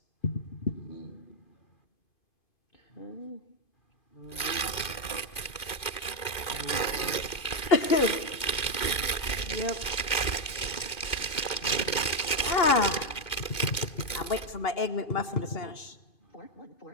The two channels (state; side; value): late; right; 2.2 ms